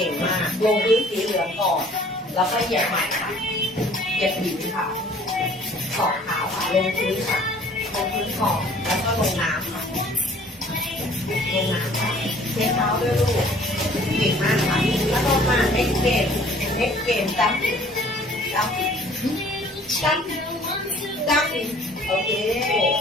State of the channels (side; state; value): both; normal; correlation 0.54